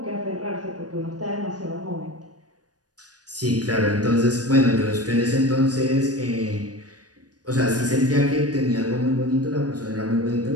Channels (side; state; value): left; late; 0.68 ms